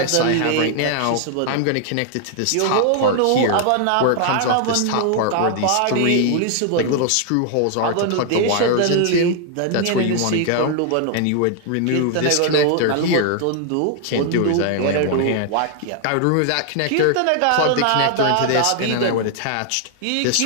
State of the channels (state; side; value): different; both; correlation 0.00